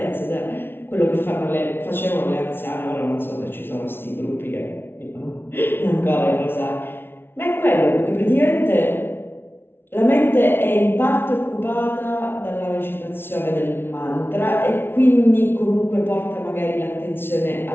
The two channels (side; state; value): right; late; 0.11 ms